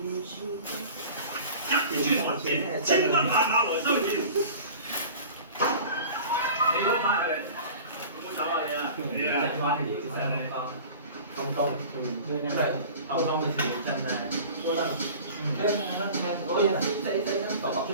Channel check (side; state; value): both; inverted; correlation -0.40